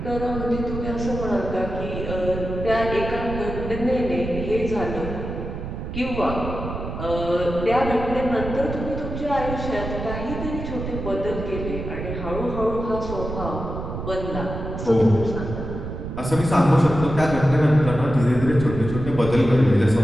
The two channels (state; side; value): noise; right; rumble, 6 dB below the sound